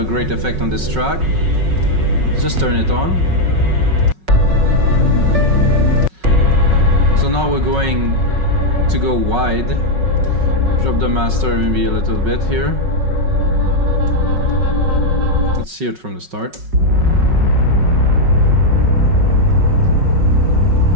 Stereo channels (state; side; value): late; left; 5.4 ms